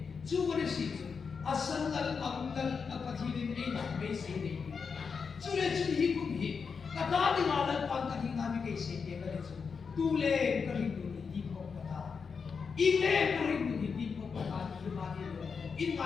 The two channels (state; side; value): quieter; right; 5.6 dB